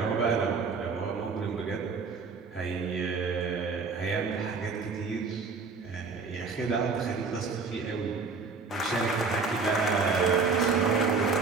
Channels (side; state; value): left; quieter; 4.6 dB